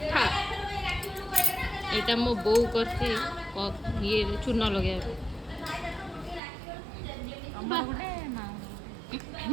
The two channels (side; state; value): left; drops out; at 6.4 s